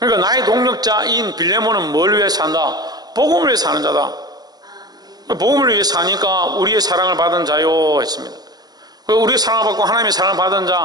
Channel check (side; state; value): left; late; 0.19 ms